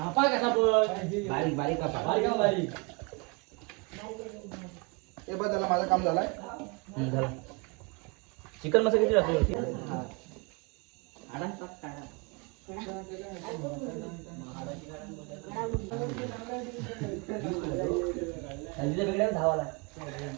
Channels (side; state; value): left; quieter; 30.4 dB